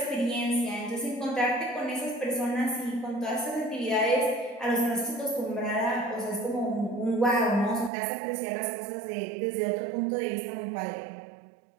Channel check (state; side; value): drops out; left; at 7.9 s